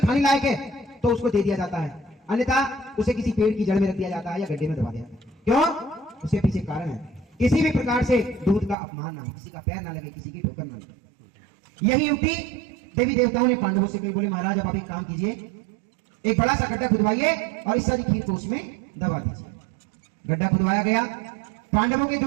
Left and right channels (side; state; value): left; drops out; at 8.8 s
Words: लायक है तो उसको दे दिया जाता है, अन्यथा उसे किसी पेड़ की जड़ में रख दिया जाता है या गड्ढे में दबा दिया जाता है। क्यों? उसके पीछे कारण है, किसी भी प्रकार से दूध का अपमान ना हो, किसी का पैर ना लगे, किसी की ठोकर ना लगे। यही युक्ति देवी देवताओं ने पांडवों से कही। बोले महाराज अब आप एक काम कीजिए, एक बड़ा सा गड्ढा खुदवाइए और इस सारी खीर को उसमें दबा दीजिए। गड्ढा खुदवाया गया। पांडवों के